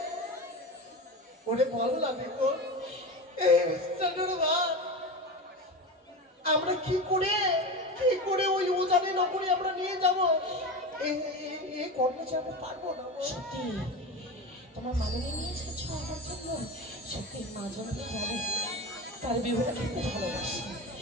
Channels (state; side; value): normal; both; correlation 0.24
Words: ওরে বল না দেখো এই মিষ্টান্নর ভাত আমরা কি করে ওই উজানি নগরে আমরা নিয়ে যাবো? এই কর্মচারী আমরা পারবো না। সত্যি তোমার মামনি নিয়ে এসেছো আমার জন্য? সত্যি মা জনকে জানে তার বিহুটা খেতে ভালোবাসি।